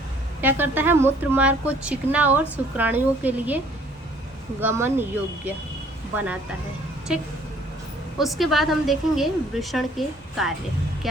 क्या करता है, मूत्र मार्ग को चिकना और शुक्राणुओं के लिए गमन योग्य बनाता है। ठीक, उसके बाद हम देखेंगे वृषण के कार्य।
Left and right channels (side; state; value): both; normal; correlation 0.58